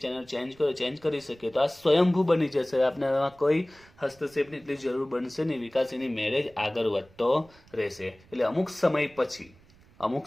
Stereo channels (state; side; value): noise; right; rumble, 27 dB below the sound